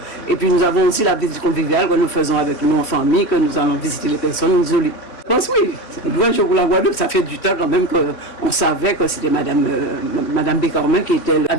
et puis nous avons aussi la visite conviviale que nous faisons avec nous en famille, que nous allons visiter les personnes isolées. Je pense oui, c'est un grand jour pour la Guadeloupe, ça fait du temps quand même qu'on savait que c'était Madame Bécormin qui était la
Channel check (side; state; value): right; late; 3.1 ms